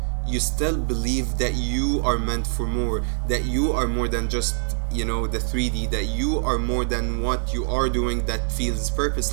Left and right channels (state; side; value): silent; left; digital silence